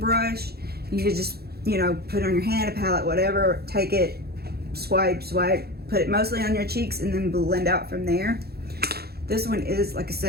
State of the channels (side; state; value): left; late; 0.46 ms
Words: You could just, you know, put it on your hand, a palette, whatever, take it, swipe, put it mostly on your cheeks and then blend out from there. This one is, like I